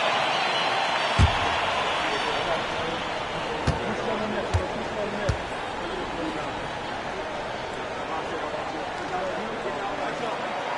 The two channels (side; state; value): both; identical; correlation 1.00